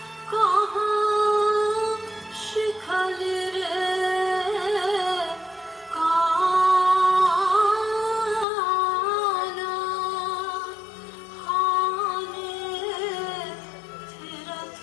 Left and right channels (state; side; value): drops out; right; at 8.5 s